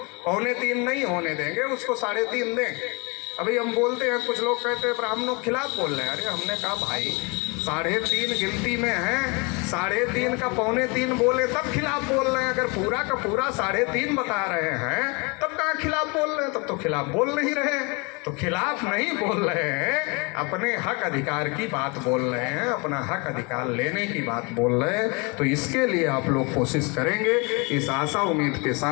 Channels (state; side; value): quieter; right; 30.0 dB